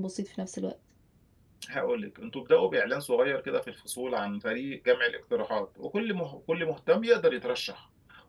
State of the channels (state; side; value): identical; both; correlation 1.00